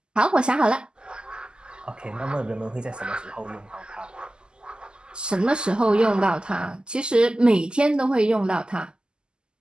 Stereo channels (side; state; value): left; late; 0.047 ms